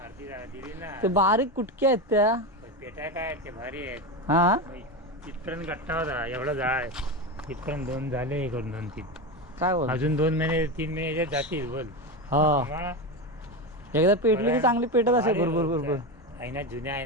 दिली ना. ते बारीक कुटके आहेत त्या. पेटाय काय ते भारी आहेत. हा इथपर्यंत गट्टा होता एवढा जाळ. इथपर्यंत 2 झाले, हे करून 2-3 काय बोल? अजून 2 महिने 3 महिने याच्यात जातील. बोल हा एकदा पेटली की चांगली पेटत असेल. बरोबर बरोबर. आईना जुन्या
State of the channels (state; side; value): normal; both; correlation 0.17